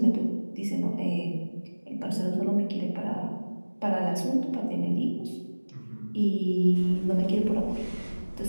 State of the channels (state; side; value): inverted; both; correlation -1.00